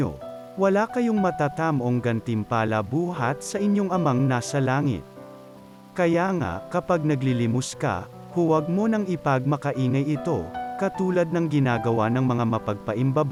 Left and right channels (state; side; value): identical; both; correlation 1.00